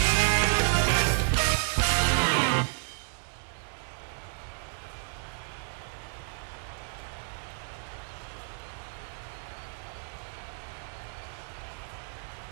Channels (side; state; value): left; silent; 57 dB below the other